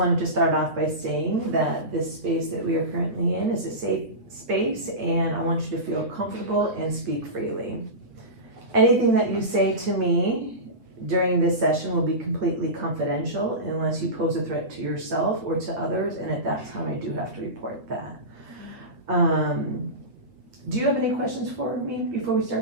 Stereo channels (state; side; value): late; left; 8.6 ms